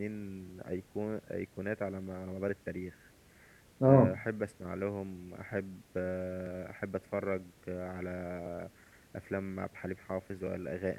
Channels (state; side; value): identical; both; correlation 1.00